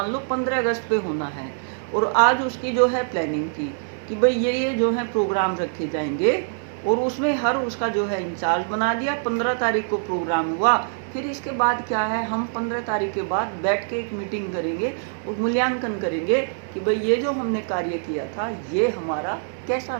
लो 15 अगस्त पे होना है, और आज उसकी जो है प्लानिंग की कि भाई ये जो है प्रोग्राम रखे जाएंगे, और उसमें हर उसका जो है इंचार्ज बना दिया। 15 तारीख को प्रोग्राम हुआ, फिर इसके बाद क्या है, हम 15 तारीख के बाद बैठ के एक मीटिंग करेंगे और मूल्यांकन करेंगे कि भाई ये जो हमने कार्य किया था ये हमारा कैसा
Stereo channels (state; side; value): silent; left; digital silence